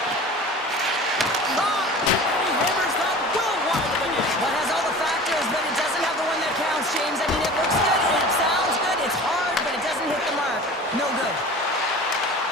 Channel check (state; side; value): normal; both; correlation 0.39